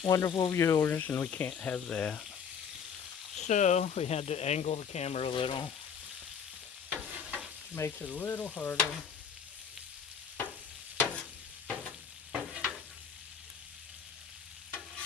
wonderful viewers, and we can't have that. So we had to angle the camera a little. Makes it a little harder.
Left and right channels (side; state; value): right; quieter; 7.0 dB